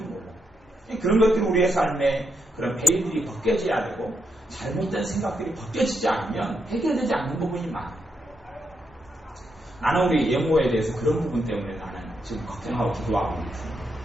그런 것들이 우리의 삶에 그런 베일들이 벗겨져야 되고 잘못된 생각들이 벗겨지지 않으면 해결되지 않는 부분이 많아요. 나는 우리 예모에 대해서 그런 부분 때문에 나는 지금 걱정하고 기도하고 있습니다.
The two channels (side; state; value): both; normal; correlation 0.80